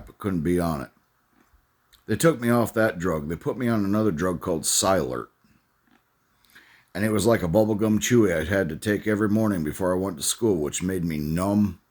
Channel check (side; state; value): both; identical; correlation 1.00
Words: I couldn't be on it. They took me off that drug. They put me on another drug called Silert. And it was like a bubblegum chewy I had to take every morning before I went to school, which made me numb.